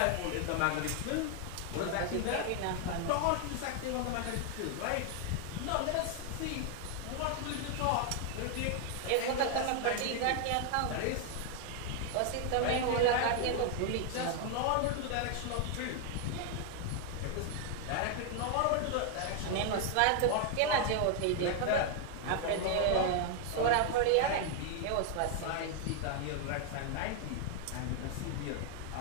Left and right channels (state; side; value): different; both; correlation 0.00